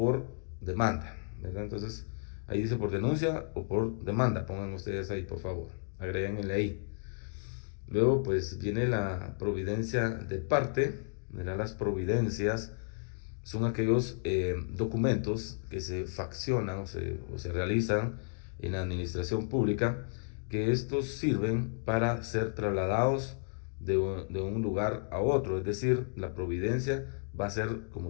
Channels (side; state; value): right; silent; digital silence